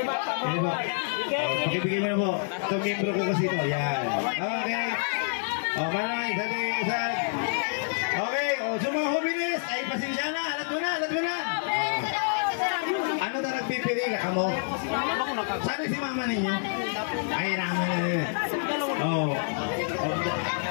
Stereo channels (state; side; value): silent; right; digital silence